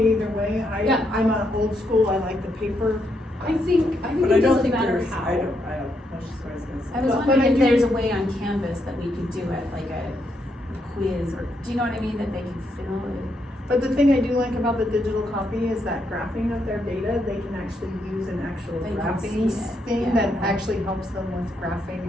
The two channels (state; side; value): normal; both; correlation 0.78